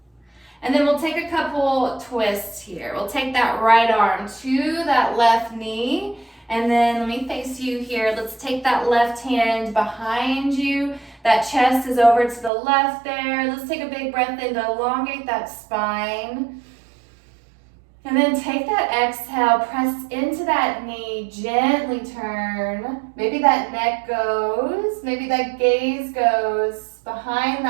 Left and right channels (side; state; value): left; drops out; at 12.5 s